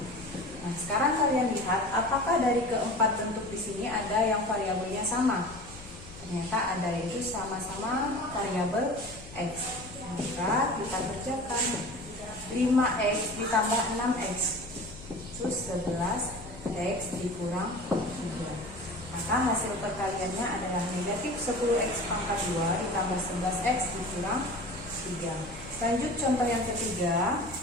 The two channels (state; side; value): noise; left; hum, 17 dB below the sound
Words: Nah, sekarang kalian lihat apakah dari keempat bentuk di sini ada yang variabelnya sama? Ternyata ada, yaitu sama-sama variabel X. Maka kita kerjakan 5X ditambah 6X itu 11X dikurang 3. Maka Maka hasil perkaliannya adalah negatif 10x pangkat 2 ditambah 11x dikurang 3. Lanjut contoh yang ketiga.